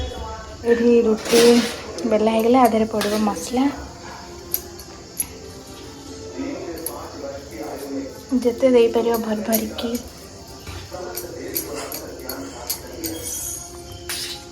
ये रोटी बेला होगला आधे पड़ो मसला जिते दे पार भर भरिकी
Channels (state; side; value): identical; both; correlation 1.00